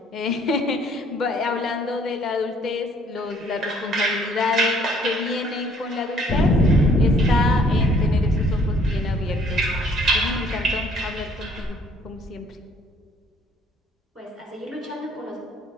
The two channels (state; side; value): normal; both; correlation 0.61